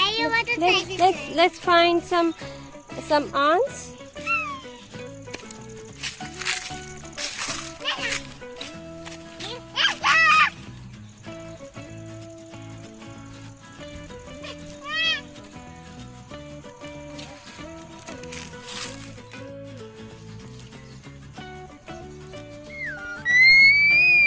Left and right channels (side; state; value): both; identical; correlation 1.00